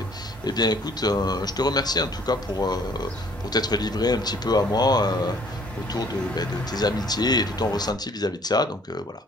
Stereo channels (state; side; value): normal; both; correlation 0.58